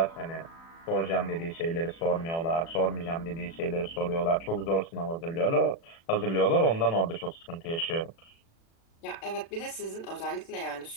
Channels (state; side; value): late; right; 36 ms